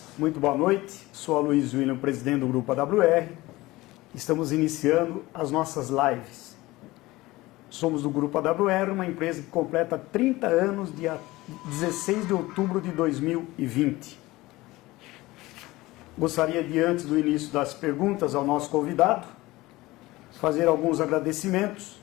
muito boa noite. Sou Aloysio William, presidente do Grupo AWR. Estamos iniciando as nossas lives. Somos do Grupo AWR, uma empresa que completa 30 anos dia 16 de outubro de 2020. Gostaria de, antes do início das perguntas ao nosso convidado, fazer alguns agradecimentos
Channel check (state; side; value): quieter; right; 19.4 dB